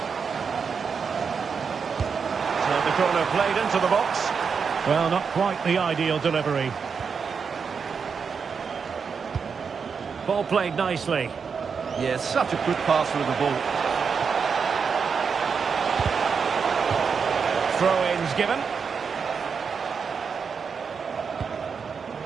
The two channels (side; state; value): left; quieter; 5.9 dB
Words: So the corner played into the box. Well, not quite the ideal delivery. Ball played nicely. Yeah, such a good passer of the ball. Throw-ins given.